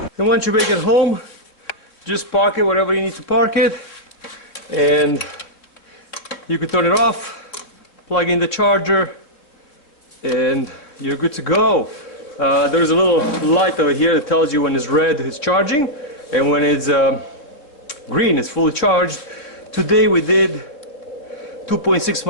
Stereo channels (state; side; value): late; right; 3.5 ms